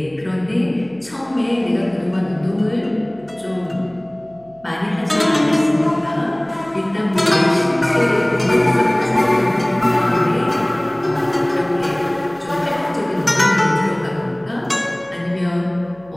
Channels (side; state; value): right; noise; hum, 28 dB below the sound